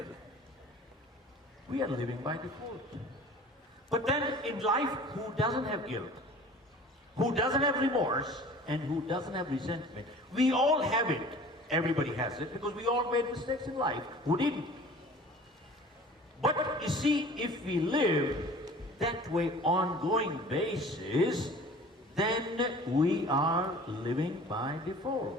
we are living by default. But then in life, who doesn't have guilt? Who doesn't have remorse? And who doesn't have resentment? We all have it. Everybody has it because we all made mistakes in life. Who didn't? But you see, if we live that way ongoing basis, then we are living by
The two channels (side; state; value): both; normal; correlation 0.44